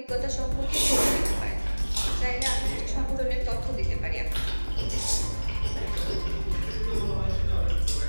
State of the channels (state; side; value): inverted; both; correlation -1.00